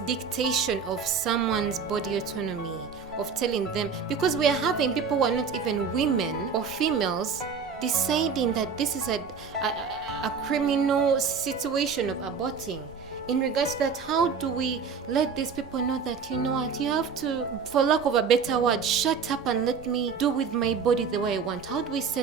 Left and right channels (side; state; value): left; quieter; 5.8 dB